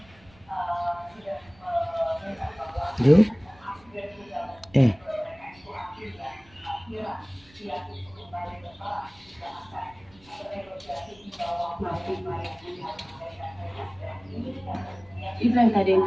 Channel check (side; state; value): right; noise; rumble, 27 dB below the sound